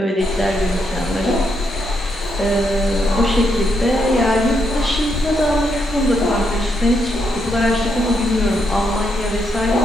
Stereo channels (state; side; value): normal; both; correlation 0.78